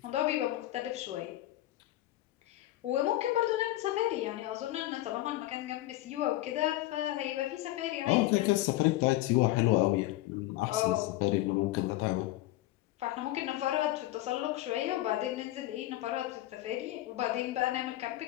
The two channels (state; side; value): quieter; right; 16.2 dB